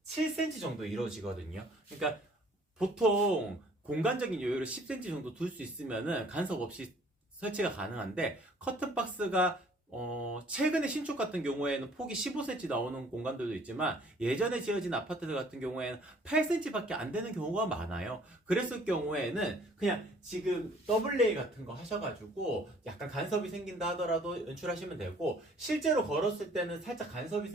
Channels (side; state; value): both; normal; correlation 0.57